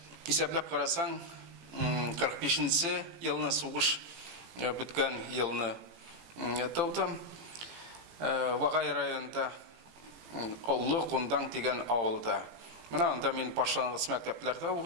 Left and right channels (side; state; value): left; late; 18 ms